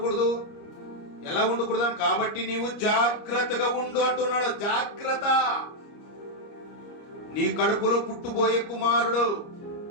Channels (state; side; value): late; right; 29 ms